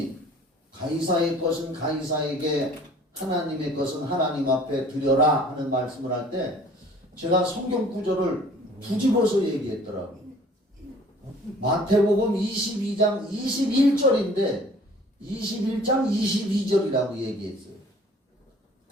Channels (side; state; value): both; normal; correlation 0.51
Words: 가이사의 것은 가이사에게, 하나님의 것은 하나님 앞에 드려라 하는 말씀을 할 때 제가 성경 구절을 뒤집어서 얘기했더라고요. 마태복음 22장 21절인데 21장 22절이라고 얘기했어요.